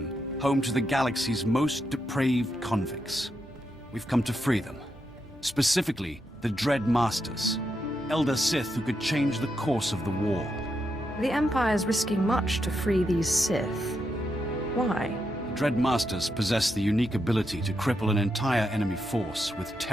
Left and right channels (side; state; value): both; normal; correlation 0.83